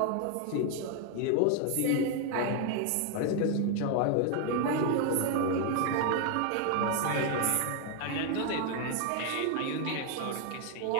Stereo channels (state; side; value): different; both; correlation 0.01